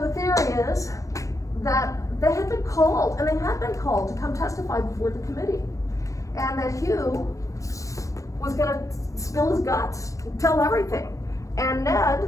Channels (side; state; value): right; late; 0.16 ms